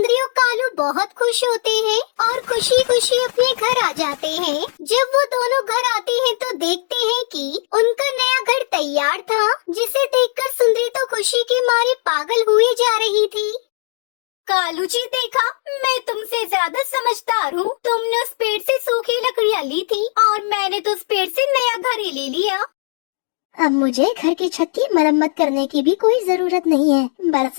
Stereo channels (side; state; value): right; silent; 67 dB below the other